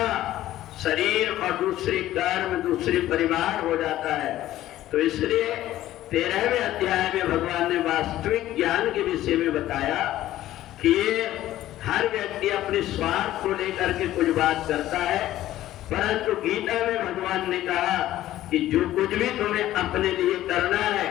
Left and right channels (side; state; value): right; quieter; 14.1 dB